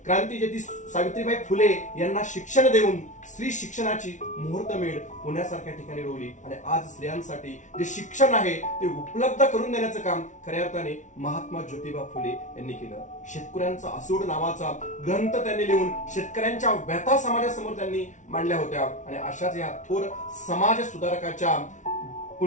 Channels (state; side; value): late; right; 0.36 ms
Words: क्रांतीज्योती सावित्रीबाई फुले यांना शिक्षण देऊन स्त्री शिक्षणाची मुहूर्तमेढ पुण्यासारख्या ठिकाणी रोवली आणि आज स्त्रियांसाठी जे शिक्षण आहे ते उपलब्ध करून देण्याचं काम खऱ्या अर्थाने महात्मा ज्योतिबा फुले यांनी केलं। शेतकऱ्यांचा असूड नावाचा ग्रंथ त्यांनी लिहून शेतकऱ्यांच्या व्यथा समाजासमोर त्यांनी मांडल्या होत्या आणि अशाच या थोर समाज सुधारकाच्या